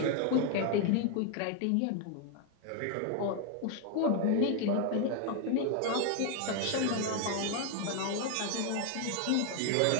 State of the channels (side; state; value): both; different; correlation 0.01